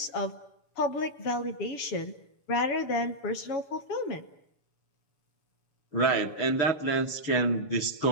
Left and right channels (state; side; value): late; right; 6.9 ms